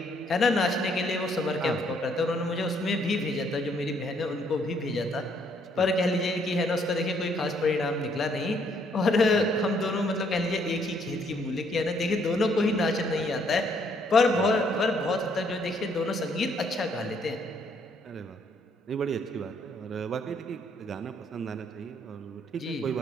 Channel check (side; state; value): both; normal; correlation 0.68